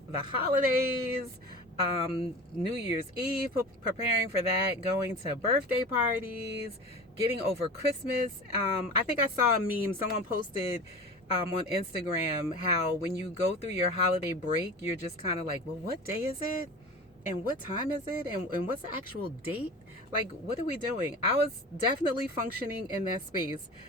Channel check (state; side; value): normal; both; correlation 0.34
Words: holidays, New Year's Eve, preparing for that, going to birthday parties, getting over Christmas. I think I saw a meme. Someone posted on Instagram how when you go through your holiday break, you're just kind of like, well, what day is it? And what time is it? And what's the actual date? Like, what are we doing? I was definitely functioning in that space